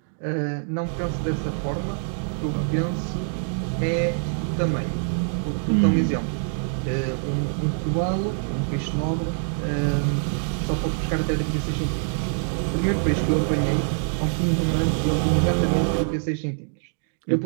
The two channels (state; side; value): silent; left; digital silence